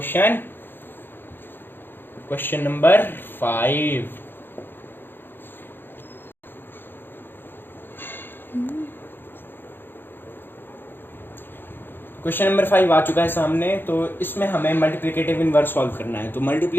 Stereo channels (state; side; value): late; right; 0.099 ms